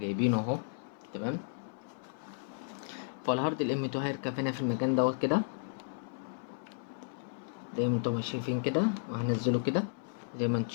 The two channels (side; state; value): right; silent; 55 dB below the other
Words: اهو. تمام. فالهارد الM2 هيركب هنا في المكان دوت كده زي ما انتم شايفين كده، وهنزله كده زي ما انتم